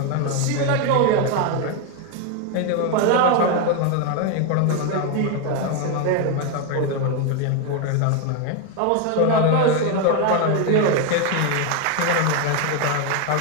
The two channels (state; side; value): different; both; correlation 0.01